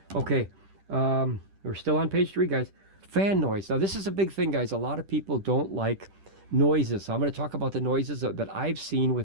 Okay, we're still on page 3, guys. Fan noise. Now, this is a big thing, guys. A lot of people don't like noises. So I'm going to talk about the noises that I've seen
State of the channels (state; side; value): late; left; 10 ms